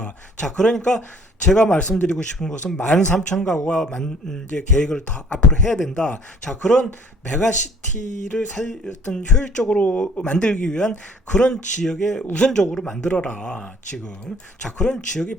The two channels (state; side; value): normal; both; correlation 0.56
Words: 자, 그러니까 제가 말씀드리고 싶은 것은 13,000가구가 이제 계획을 더 앞으로 해야 된다. 자, 그런 메가시티를 어떤 효율적으로 만들기 위한 그런 지역에 우선적으로 만들어라, 지금. 자, 그런 지역이